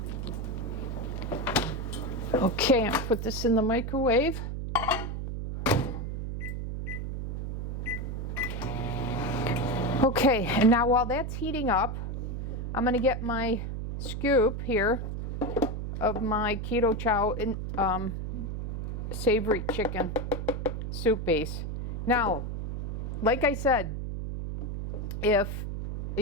Okay, I'm gonna put this in the microwave. Okay, and now while that's heating up, I'm gonna get my scoop here of my keto chow and savory chicken soup base. Now, like I said, if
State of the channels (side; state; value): right; noise; hum, 4 dB below the sound